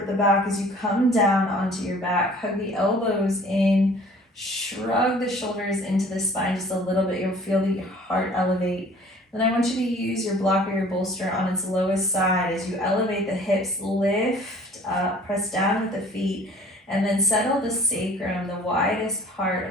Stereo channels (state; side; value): normal; both; correlation 0.51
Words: the back as you come down onto your back. Hug the elbows in. Shrug the shoulders into the spine just a little bit. You'll feel the heart elevate. Then I want you to use your block or your bolster on its lowest side. As you elevate the hips, lift up, press down with the feet. And then settle the sacrum, the widest part,